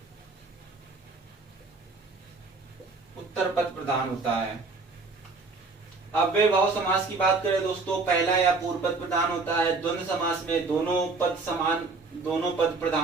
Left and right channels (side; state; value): left; quieter; 3.9 dB